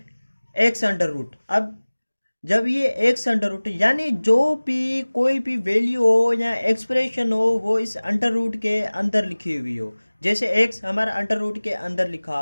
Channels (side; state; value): both; inverted; correlation -1.00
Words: एक्स अंडर रूट। अब जब ये एक्स अंडर रूट यानी जो भी कोई भी वैल्यू हो या एक्सप्रेशन हो वो इस अंडर रूट के अंदर लिखी हुई हो, जैसे एक्स हमारा अंडर रूट के अंदर लिखा